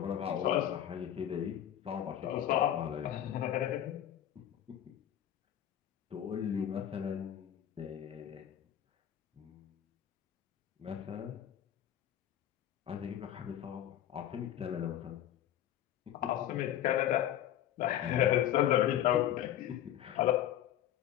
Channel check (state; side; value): quieter; right; 11.4 dB